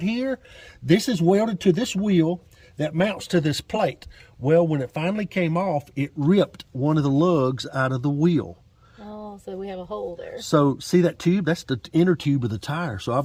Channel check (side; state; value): both; identical; correlation 1.00